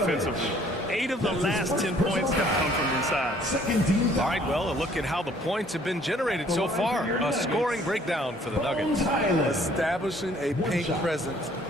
8 of the last 10 points have come from inside. All right, well, a look at how the points have been generated so far. A scoring breakdown for the Nuggets. Establishing a paint presence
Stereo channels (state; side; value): normal; both; correlation 0.59